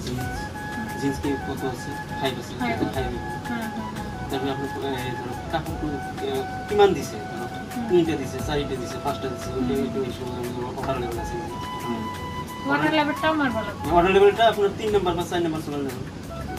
জিন্স কে কত আছে 5 আছে 5 হ্যাঁ তারপরে আপনি কাপড় কিমান দিছে তিনটা দিছে চারটা দিছে পাঁচটা দিছে ওই অর্ডার লেভেল আছে অর্ডার লেভেলটা আমার ভালো অর্ডার লেভেলটা আপনার 3 নাম্বার বা 4 নাম্বার চলে নেবেন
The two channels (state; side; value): identical; both; correlation 1.00